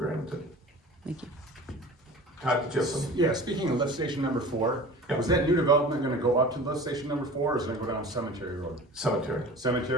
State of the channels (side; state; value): both; normal; correlation 0.39